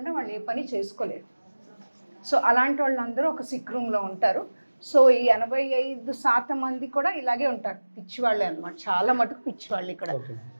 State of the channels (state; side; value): inverted; both; correlation -1.00